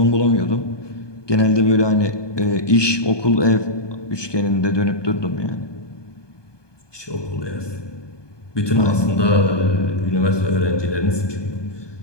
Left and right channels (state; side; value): late; right; 1.2 ms